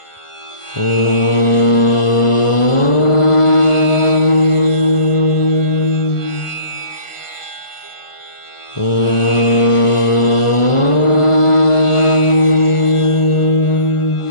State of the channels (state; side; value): late; right; 1.4 ms